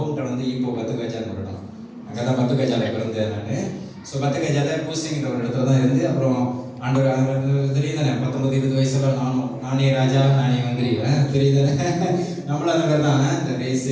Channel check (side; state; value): both; identical; correlation 1.00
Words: டவுன் வந்து இப்போ பத்துக்காஜான்னு ஒரு இடம். அங்கே தான் பத்துக்காஜாவில் பிறந்தேன் நான். ஸோ பத்துக்காஜாவில் பூசிங்கிற ஒரு இடத்துல தான் இருந்து அப்புறம் ஆண்டவர் தெரியுதானே 19-20 வயசுல நானே ராஜா நானே வந்துடுவேன், தெரியுதானே? நம்மளும் அந்த மாதிரி தான் இந்த